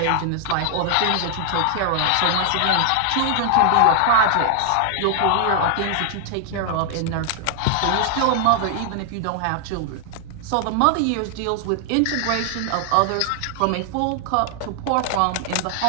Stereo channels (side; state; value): both; different; correlation 0.00